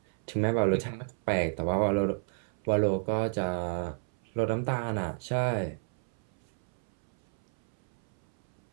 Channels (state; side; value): silent; left; 57 dB below the other